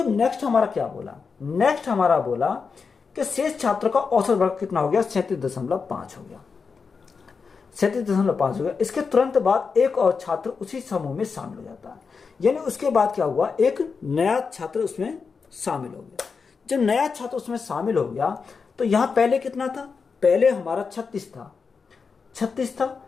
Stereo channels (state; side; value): quieter; right; 5.2 dB